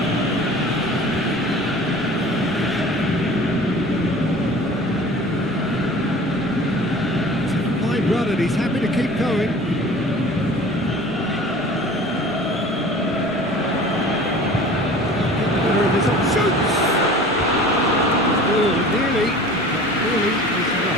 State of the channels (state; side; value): noise; right; rumble, 21 dB below the sound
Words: Fine run and he's happy to keep going. Shoots! Oh, nearly, but really is